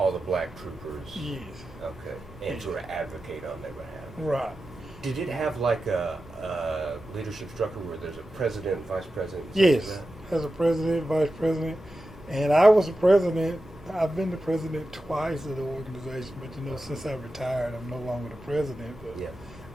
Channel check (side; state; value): both; normal; correlation 0.92